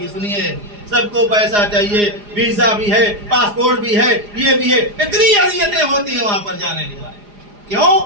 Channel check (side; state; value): left; late; 4.9 ms